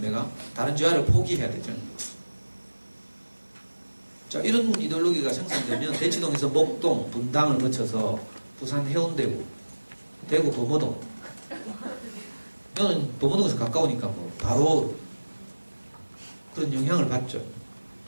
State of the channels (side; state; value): both; inverted; correlation -1.00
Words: 다른 재화를 포기해야 되죠. 자, 이런 이데올로기가 생산되면 대치동에서 목동, 분당을 거쳐서 부산 해운대구, 대구 범어동. 저는 범어동에서 가까우니까 뭐 바로 그런 영향을 받죠.